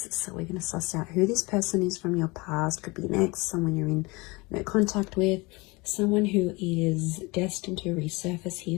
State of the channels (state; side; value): quieter; right; 25.3 dB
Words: So we're going to suss out who this person is from your past. Could be an ex, someone you're in contact with, someone who is destined to resurface